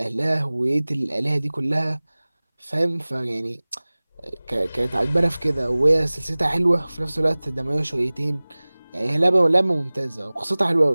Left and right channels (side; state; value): both; inverted; correlation -1.00